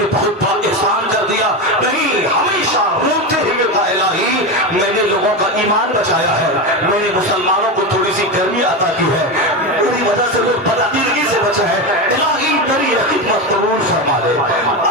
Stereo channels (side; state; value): both; normal; correlation 0.17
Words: بہت بڑا احسان کر دیا. نہیں, ہمیشہ روتے ہوئے کہا الہی میں نے لوگوں کا ایمان بچایا ہے, میں نے مسلمانوں کو تھوڑی سی گرمی عطا کی ہے, میری وجہ سے لوگ بدعقیدگی سے بچے ہیں, الہی میری خدمت قبول فرما لے.